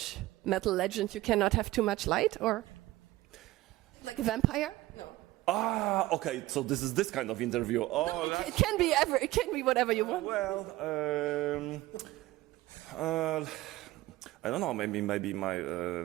metal legend, you cannot have too much light, or like a vampire? No. Ah, okay. So this is this kind of interview. Oh, No, it can be ever. It can be whatever you want. well, I don't know. Maybe my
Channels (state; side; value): quieter; left; 17.9 dB